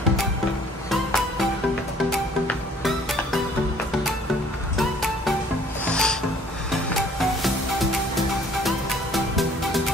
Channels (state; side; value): normal; both; correlation 0.57